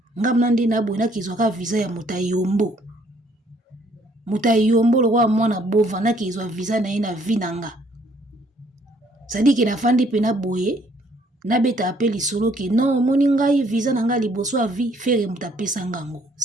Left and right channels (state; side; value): normal; both; correlation 0.64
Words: ngabu na nde na aboye nakizwaka visa ya moto ayombo lokwa mwana bova nakizwa visa na ye na vie nanga sadi ke nafandi pe na boye nabeta ape lisolo ke non moni ngai visa na ngai liboso ya vie fere moto apesa ngango